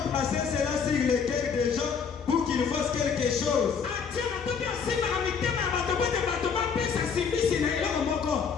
placé cela sur le cœur des gens pour qu'ils fassent quelque chose.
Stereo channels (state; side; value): quieter; right; 6.2 dB